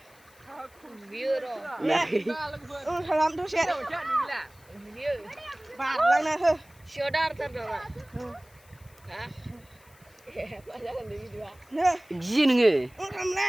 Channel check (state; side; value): noise; left; hiss, 28 dB below the sound